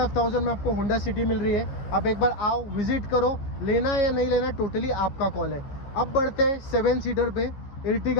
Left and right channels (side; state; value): right; late; 15 ms